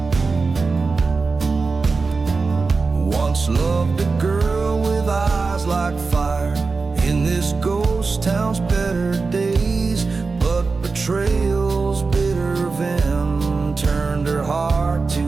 once loved a girl with eyes like fire. In this ghost town's better days, but betrayal's bitter venom turned her heart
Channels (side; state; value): left; quieter; 4.3 dB